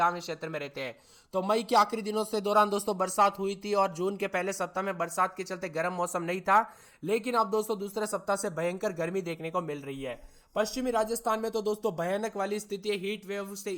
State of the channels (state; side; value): identical; both; correlation 1.00